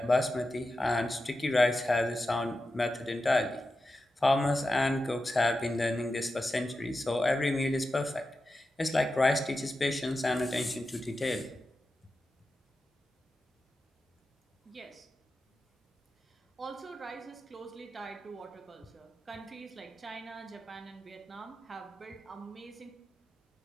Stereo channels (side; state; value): both; normal; correlation 0.91